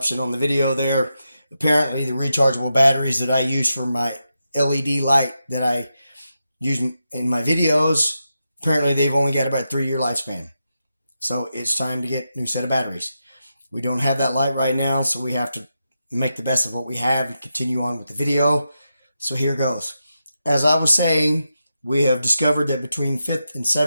on the video there. Apparently, the rechargeable batteries that I use for my LED light that I use in my videos, apparently they've only got about a 3-year lifespan. So it's time to get a new set of batteries. We don't have that light right now, so we have to make the best of what we have and continue on with the video. So here goes. As I was saying, we have discovered that between 5th and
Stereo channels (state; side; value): inverted; both; correlation -0.88